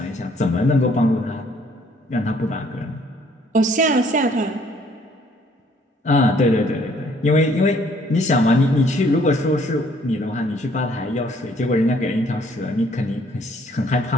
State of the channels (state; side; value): normal; both; correlation 0.62